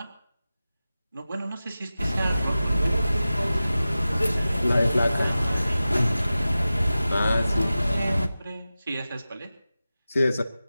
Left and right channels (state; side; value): inverted; both; correlation -0.95